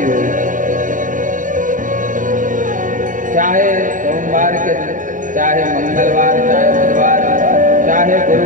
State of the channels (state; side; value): late; left; 0.38 ms